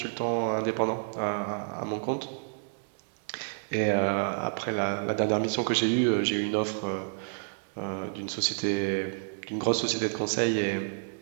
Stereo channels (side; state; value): left; silent; digital silence